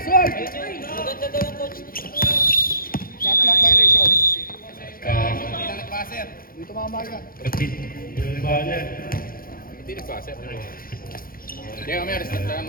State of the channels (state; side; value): late; right; 0.42 ms